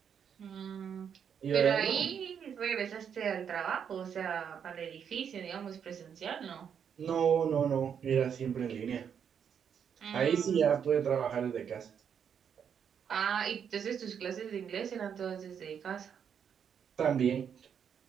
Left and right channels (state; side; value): quieter; left; 7.7 dB